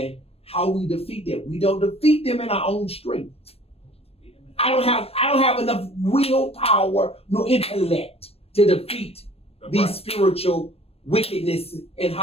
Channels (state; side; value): late; right; 0.28 ms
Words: how we defeat them. We don't defeat them in our own strength. I don't have enough willpower nor intellect to defeat these spiritual wickedness in